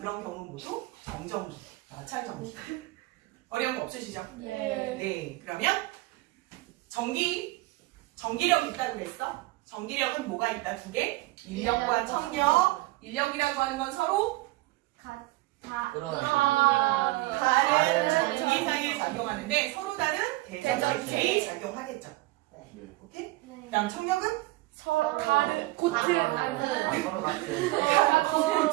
경우 모두 정전기, 마찰전기. 어려운 거 없으시죠? 네. 그러면 전기력 있다고 그랬어? 전기력은 뭐가 있다? 두 개? 인력과 청력. 인력이라고 하는 건 서로 다른 전기상에 작용하는데 서로 다른 대전체끼리 작용하겠죠. 오케이? 그 다음 청력은? 서로 다른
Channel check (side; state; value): left; quieter; 19.9 dB